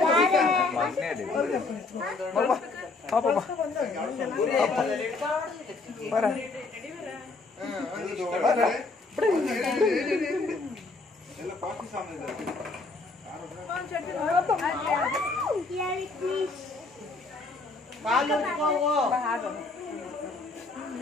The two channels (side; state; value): right; quieter; 3.7 dB